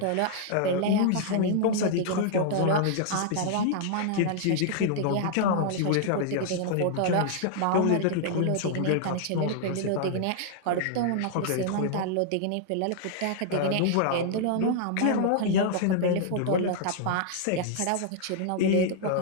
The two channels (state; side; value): different; both; correlation -0.01